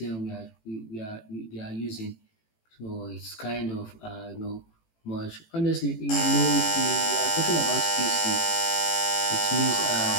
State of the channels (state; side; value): late; right; 18 ms